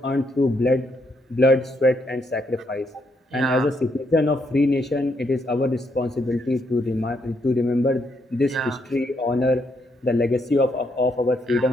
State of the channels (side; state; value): both; normal; correlation 0.75